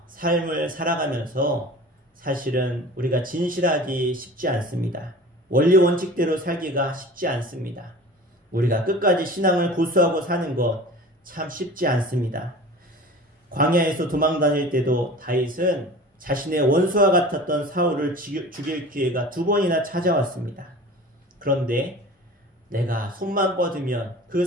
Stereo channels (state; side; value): normal; both; correlation 0.39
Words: 삶을 살아가면서 사실은 우리가 진실하기 쉽지 않습니다. 원리 원칙대로 살기가 쉽지 않습니다. 우리가 끝까지 신앙을 고수하고 사는 것 참 쉽지 않습니다. 광야에서 도망 다닐 때도 다윗은 자신의 원수와 같았던 사울을 죽일 기회가 2번이나 찾아왔습니다. 그런데 내가 손만 뻗으면 그